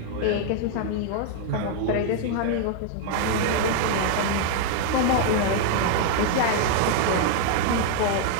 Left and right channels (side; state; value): both; different; correlation 0.00